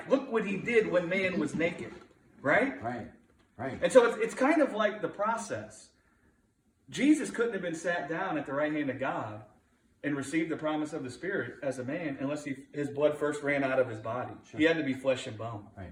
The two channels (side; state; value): both; identical; correlation 1.00